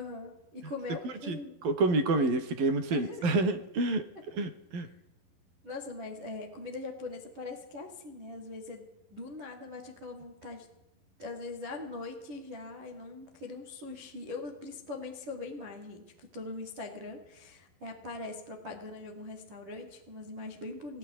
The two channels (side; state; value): left; late; 11 ms